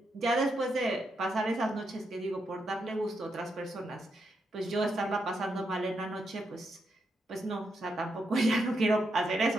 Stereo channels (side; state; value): both; normal; correlation 0.82